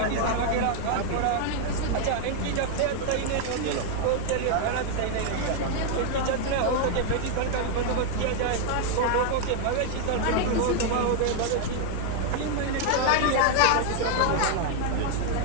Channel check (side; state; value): both; different; correlation 0.00